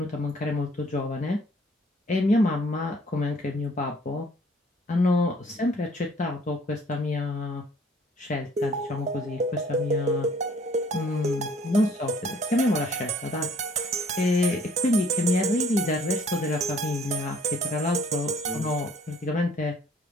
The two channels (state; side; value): normal; both; correlation 0.58